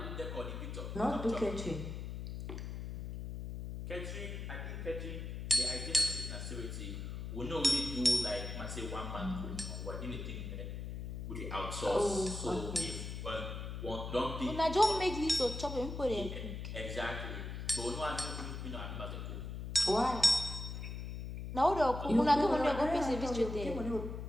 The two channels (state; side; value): noise; left; hum, 6 dB below the sound